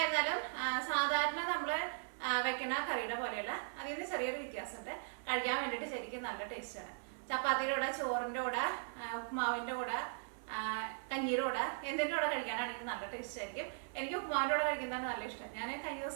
സാധാരണ നമ്മൾ വെക്കുന്ന കറിയുടെ പോലെയല്ല, അതിൽ നിന്ന് ചെറിയൊരു വ്യത്യാസമുണ്ട്. കഴിക്കാൻ വേണ്ടിയിട്ട് ശരിക്കും നല്ല ടേസ്റ്റാണ്. ചപ്പാത്തിയുടെ കൂടെ, ചോറിൻ്റെ കൂടെ, ഉപ്മാവിൻ്റെ കൂടെ, കഞ്ഞീരുടെ കൂടെ, എന്തിൻ്റെ കൂടെ കഴിക്കാനാണെങ്കിൽ നല്ല ടേസ്റ്റ് ആയിരിക്കും. എനിക്ക് ഉപ്മാവിൻ്റെ കൂടെ കഴിക്കുന്നതാണ് നല്ല ഇഷ്ടം. ഞാൻ കഴിഞ്ഞ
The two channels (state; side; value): silent; left; digital silence